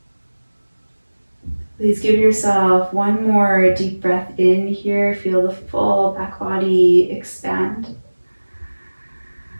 Please give yourself one more deep breath in here. Feel the full back body expand.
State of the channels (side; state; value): both; inverted; correlation -1.00